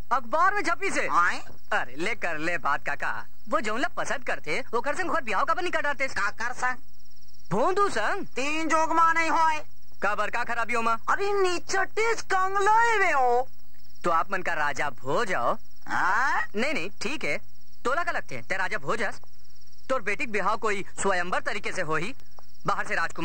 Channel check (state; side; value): identical; both; correlation 1.00